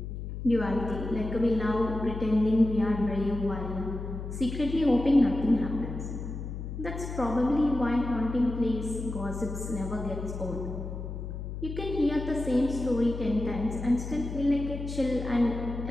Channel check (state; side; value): noise; left; hum, 7 dB below the sound